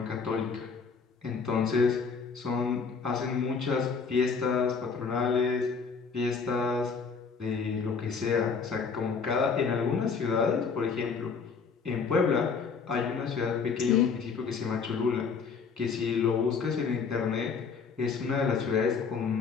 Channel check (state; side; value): quieter; right; 5.5 dB